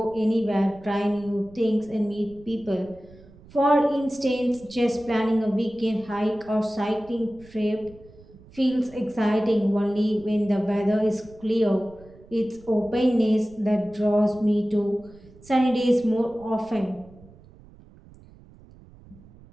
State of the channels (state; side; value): noise; right; rumble, 23 dB below the sound